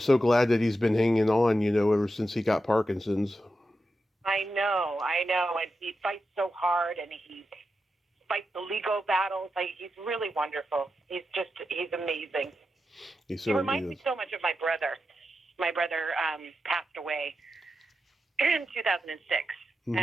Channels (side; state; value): both; normal; correlation 0.89